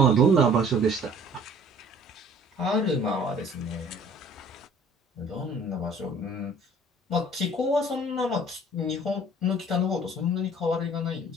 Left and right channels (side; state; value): both; normal; correlation 0.52